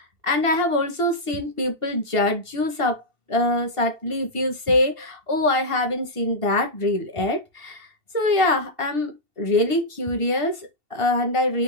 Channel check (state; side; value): late; left; 2.7 ms